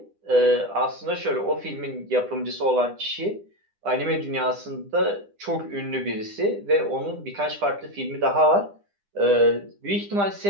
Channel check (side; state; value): left; late; 10 ms